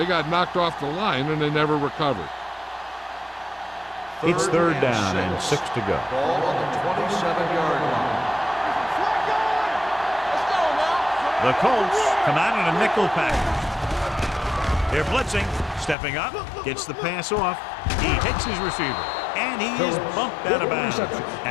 got knocked off the line, and they never recovered. It's third down and 6 to go. Ball on the 27-yard line. The Colts come out in a nickel package. They're blitzing. Stepping up. Gets the pass off. He hits his receiver. And he is bumped out of bounds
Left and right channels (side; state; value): right; drops out; at 16.0 s